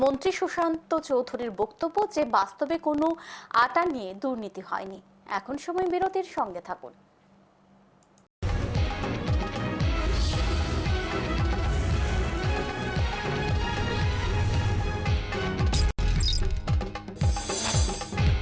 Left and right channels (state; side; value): identical; both; correlation 1.00